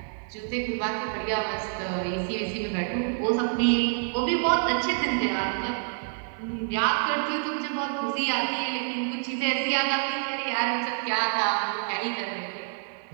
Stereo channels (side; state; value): left; silent; 60 dB below the other